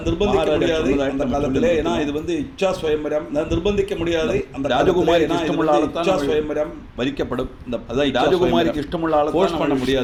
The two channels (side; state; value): both; identical; correlation 1.00